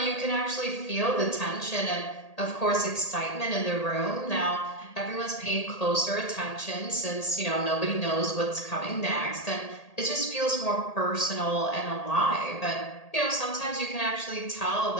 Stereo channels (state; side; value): late; right; 1.8 ms